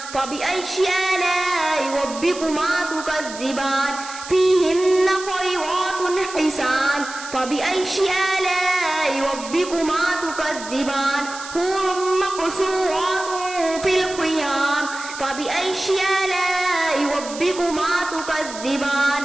فبأي آلاء ربكما تكذبان فيهن خيرات حسان فبأي آلاء ربكما تكذبان حور مقصورات في الخيام فبأي آلاء ربكما تكذبان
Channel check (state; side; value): noise; right; hiss, 12 dB below the sound